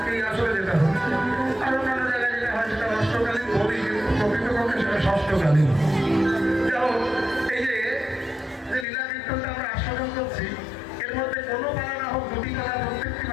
আসলে যেটা হবে, আর অন্যান্য জায়গায় যেটা হয় সেটা অষ্টকালীন বলি, কিন্তু প্রকৃতপক্ষে সেটা ষষ্ঠকালীন। যাই হোক, এই যে লীলা কীর্তনটা আমরা আস্বাদন করছি, এর মধ্যে কোনো পালা না হোক, দুটি পালা প্রত্যেকটি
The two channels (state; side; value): drops out; right; at 8.8 s